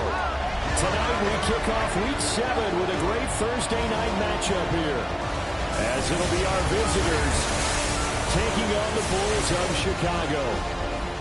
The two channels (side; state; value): both; identical; correlation 1.00